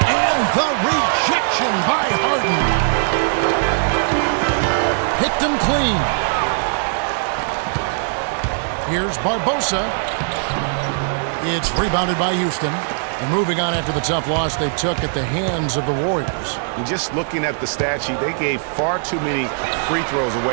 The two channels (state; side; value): silent; left; digital silence